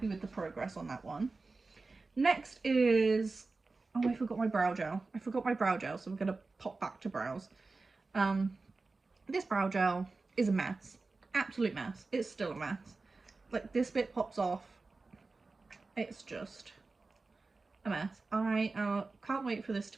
with the progress on that one. Next is, oh, I forgot my brow gel. So we're going to pop back to brows. This brow gel is a mess. Absolute mess. It's still a mess. Like, this bit pops off. It's just a mess. I can't wait for this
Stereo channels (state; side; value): quieter; left; 3.7 dB